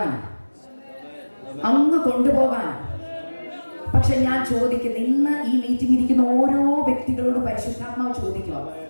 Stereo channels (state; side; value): inverted; both; correlation -1.00